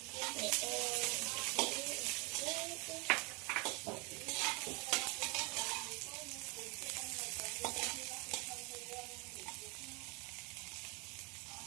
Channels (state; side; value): quieter; left; 29.6 dB